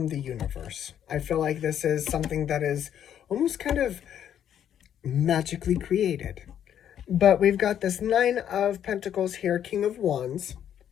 the universe. I feel like this is something that is almost kind of magically created. But we've got this Nine of Pentacles here, King of Wands.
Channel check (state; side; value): quieter; right; 9.8 dB